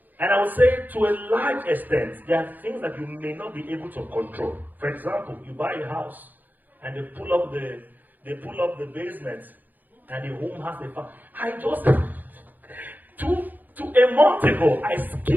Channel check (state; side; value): late; left; 0.084 ms